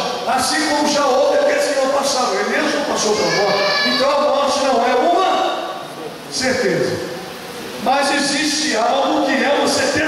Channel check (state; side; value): identical; both; correlation 1.00